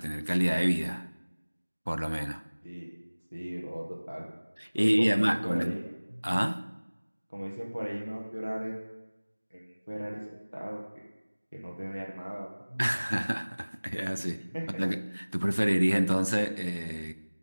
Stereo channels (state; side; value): inverted; both; correlation -1.00